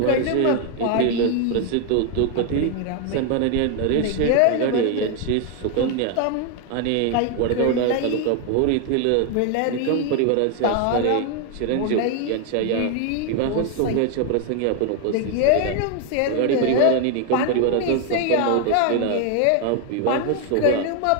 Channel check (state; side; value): different; both; correlation 0.01